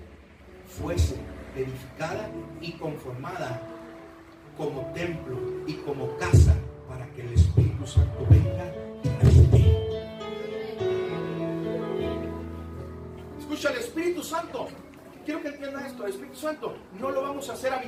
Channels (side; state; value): both; identical; correlation 1.00